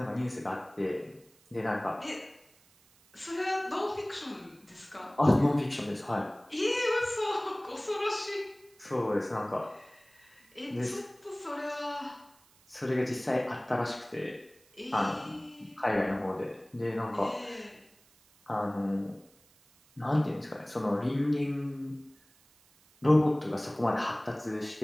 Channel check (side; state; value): right; noise; hiss, 30 dB below the sound